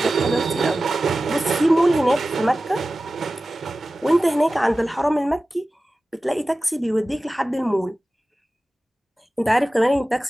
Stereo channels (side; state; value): both; normal; correlation 0.96